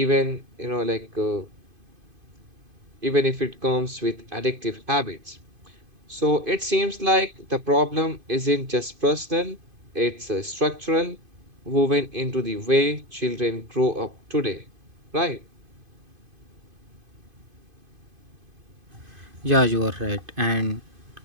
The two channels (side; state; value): left; late; 2.5 ms